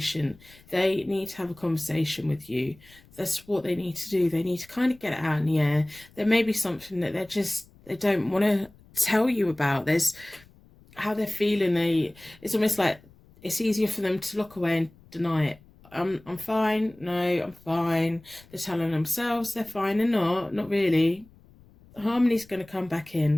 They need to have a conversation with you. That's what they need to do. They need to kind of get it out in the air. There may be something that they don't want to tell you about. There's how they're feeling. It's almost like it's easier for them to look away and deny it. I'm fine. No, I'm fine. They're telling themselves they're fine. They're not really. Harmony's going to come back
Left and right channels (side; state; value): left; noise; rumble, 26 dB below the sound